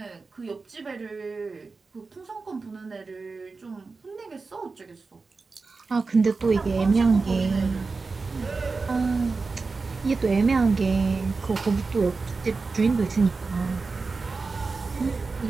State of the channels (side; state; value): left; quieter; 4.2 dB